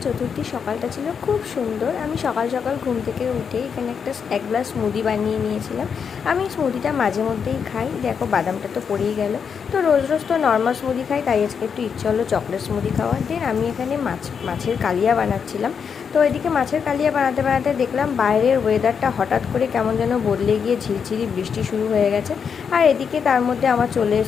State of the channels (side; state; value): right; quieter; 6.6 dB